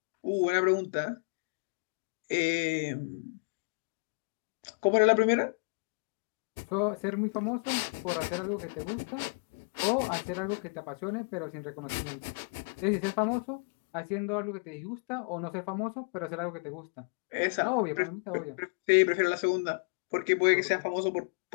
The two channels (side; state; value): right; quieter; 39.2 dB